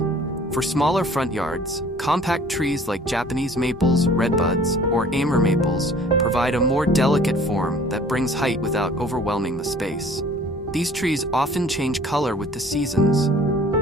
For smaller front yards, compact trees like Japanese maples, redbuds, or Amur maples provide a more delicate form that brings height without overwhelming the space. These trees often change color with the seasons,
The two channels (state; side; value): normal; both; correlation 0.51